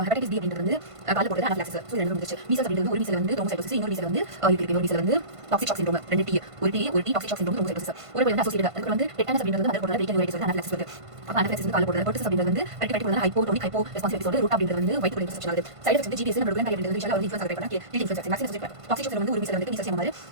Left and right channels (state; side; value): late; left; 1.5 ms